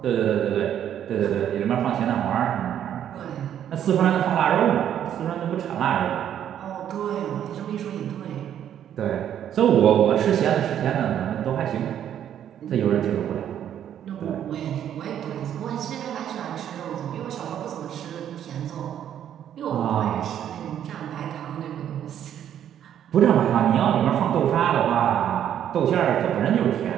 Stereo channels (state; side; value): quieter; left; 10.1 dB